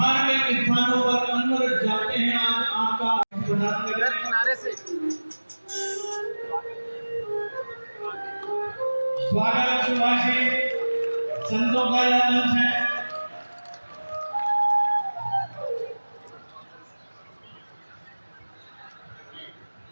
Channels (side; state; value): both; inverted; correlation -1.00